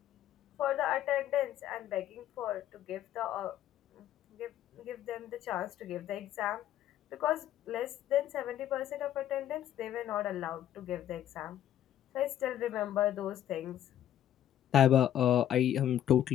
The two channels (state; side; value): quieter; right; 11.4 dB